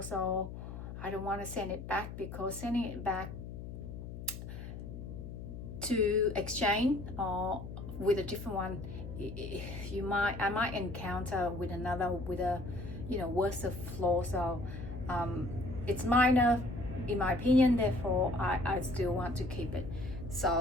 so I don't want to send it back, because sending it back to exchange or with a different one, I might encounter with another with a, you know, worse of flaw. So it's minor in my opinion, therefore I still want to keep it.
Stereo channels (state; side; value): noise; left; hum, 9 dB below the sound